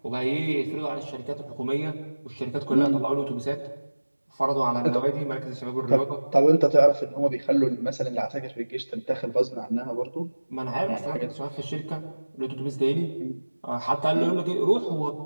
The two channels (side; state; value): both; inverted; correlation -1.00